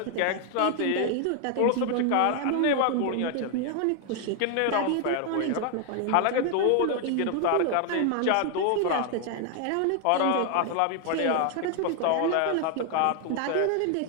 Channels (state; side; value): different; both; correlation 0.00